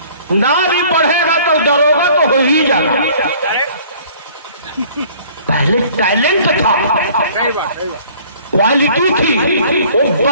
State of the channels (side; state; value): both; inverted; correlation -0.52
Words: نہ بھی پڑھے گا تو دروگا تو ہو ہی جانا. پہلے ٹیلنٹ تھا، کوالٹی تھی. وہ